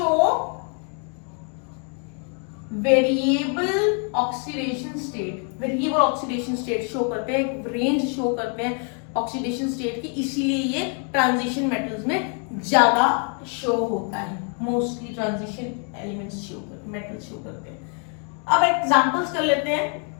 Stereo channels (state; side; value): quieter; right; 39.6 dB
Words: variable oxidation state. Variable oxidation state show करते हैं, एक रेंज शो करते हैं ऑक्सीडेशन स्टेट की, इसीलिए ये ट्रांजिशन मेटल्स में ज्यादा शो होता है। मोस्टली ट्रांजिशन एलिमेंट्स शो करते, मेटल्स शो करते हैं। अब एग्जांपल्स कर लेते हैं।